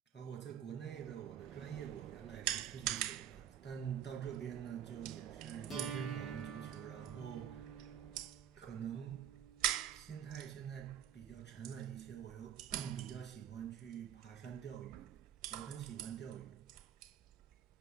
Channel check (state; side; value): quieter; left; 9.7 dB